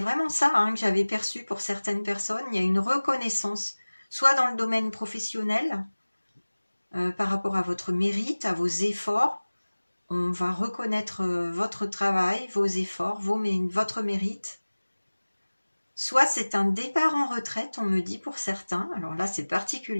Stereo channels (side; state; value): both; inverted; correlation -1.00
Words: ça hein, que j'avais perçu pour certaines personnes. Il y a une reconnaissance, soit dans le domaine professionnel, par rapport à votre mérite, à vos efforts. On va reconnaître votre travail, vos efforts, votre mérite. Soit c'est un départ en retraite, on me dit pour certains. Alors là, c'est